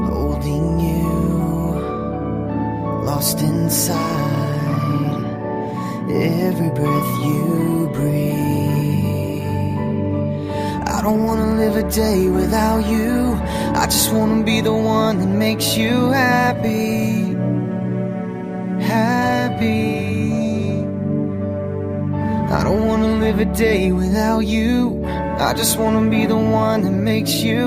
holding you, lost inside every breath you breathe. I don't wanna live a day without you. I just wanna be the one that makes you happy, happy. I don't wanna live a day without you. I just wanna be the one that makes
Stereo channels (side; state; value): both; identical; correlation 1.00